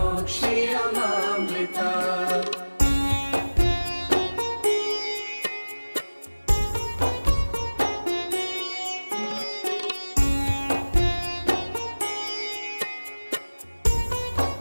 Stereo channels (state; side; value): inverted; both; correlation -1.00